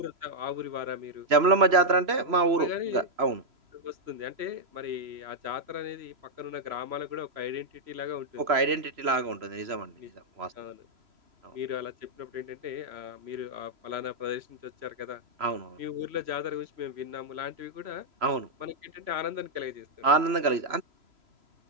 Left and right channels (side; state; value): left; late; 3.0 ms